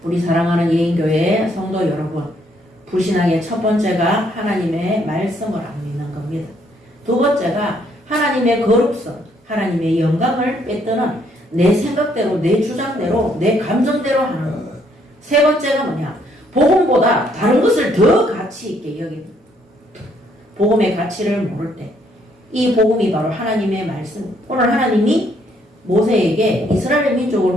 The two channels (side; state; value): both; normal; correlation 0.69